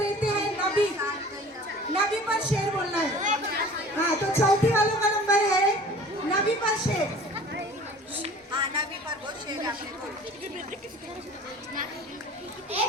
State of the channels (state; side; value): normal; both; correlation 0.45